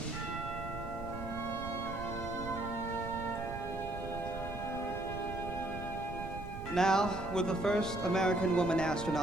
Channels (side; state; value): right; noise; rumble, 9 dB below the sound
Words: Now, with the first American woman